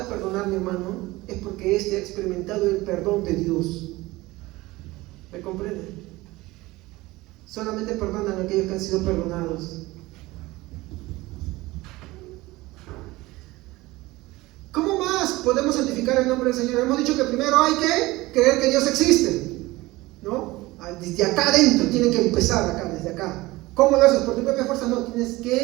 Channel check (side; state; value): left; quieter; 19.9 dB